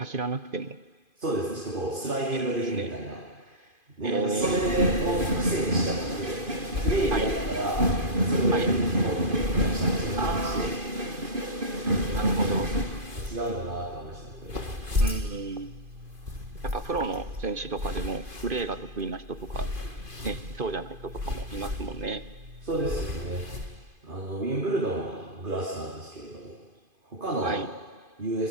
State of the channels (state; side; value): late; left; 2.5 ms